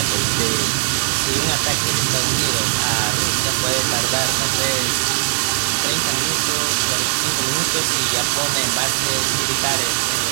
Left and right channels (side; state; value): left; silent; digital silence